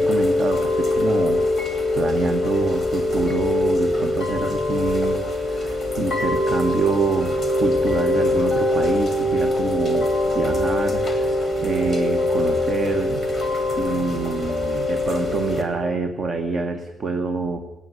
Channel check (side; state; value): both; normal; correlation 0.77